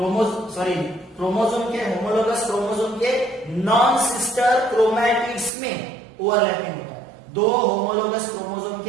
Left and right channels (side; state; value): left; drops out; at 5.5 s